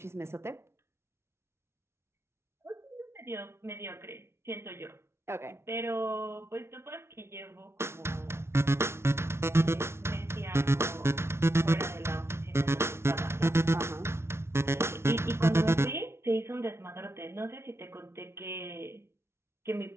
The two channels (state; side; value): late; left; 0.12 ms